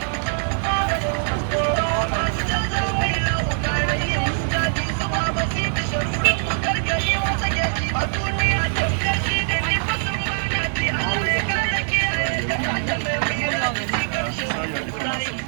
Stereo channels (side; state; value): left; silent; digital silence